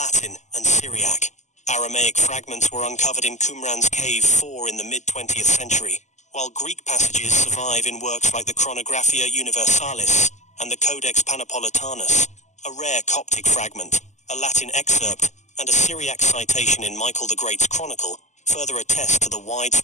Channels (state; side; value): late; right; 0.34 ms